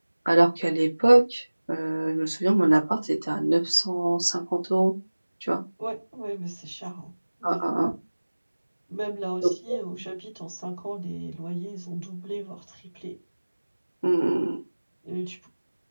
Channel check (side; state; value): both; inverted; correlation -1.00